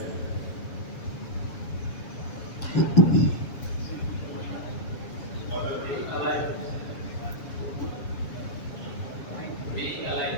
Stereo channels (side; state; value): right; late; 7.3 ms